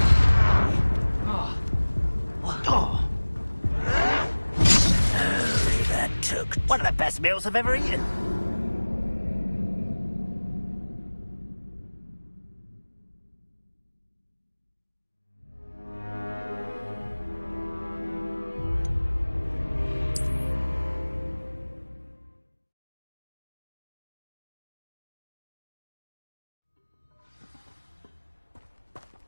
Oh, that took one of the best meals I've ever eaten.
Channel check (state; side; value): inverted; both; correlation -1.00